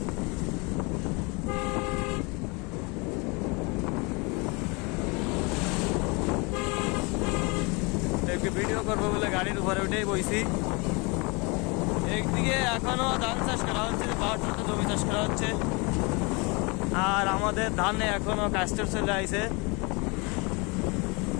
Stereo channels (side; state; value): right; quieter; 29.0 dB